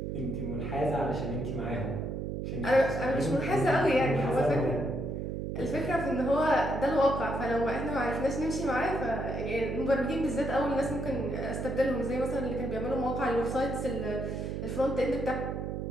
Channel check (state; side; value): noise; right; hum, 4 dB below the sound